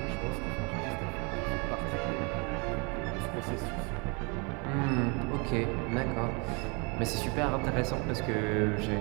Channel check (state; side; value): quieter; left; 31.9 dB